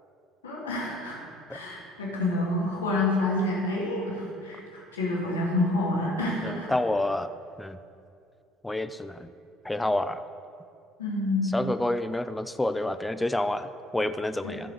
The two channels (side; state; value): both; normal; correlation 0.63